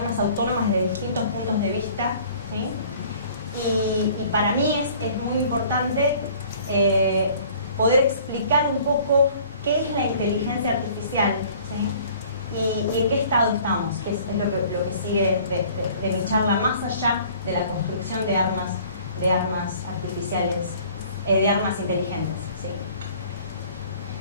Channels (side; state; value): both; inverted; correlation -0.52